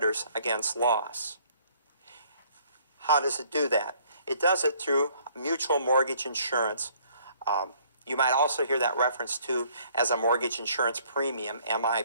against loss. How does it do that? It does it through mutual mortgage insurance. You might also hear that reference to as a mortgage insurance premium,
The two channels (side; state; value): both; inverted; correlation -0.61